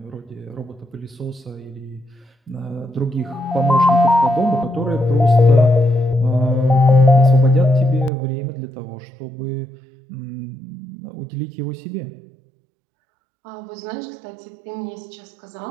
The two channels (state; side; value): drops out; left; at 8.1 s